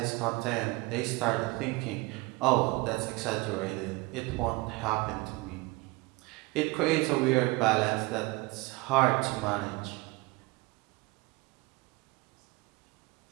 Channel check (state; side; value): quieter; left; 23.9 dB